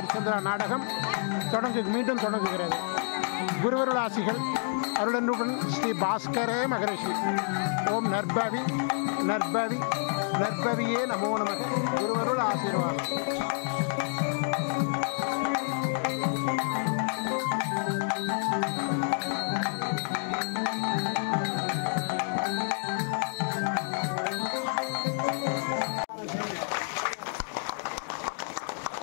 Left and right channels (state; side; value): silent; right; digital silence